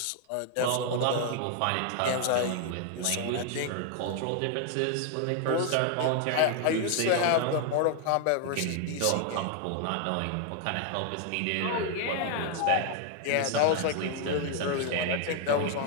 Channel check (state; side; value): different; both; correlation 0.00